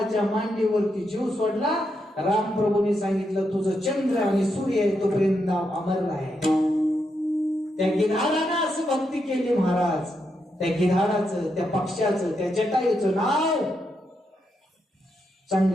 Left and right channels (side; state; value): both; normal; correlation 0.82